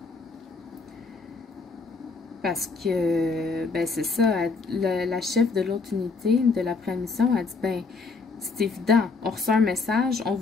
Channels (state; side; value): quieter; right; 4.3 dB